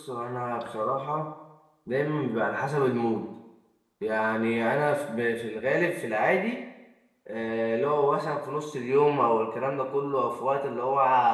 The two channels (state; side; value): identical; both; correlation 1.00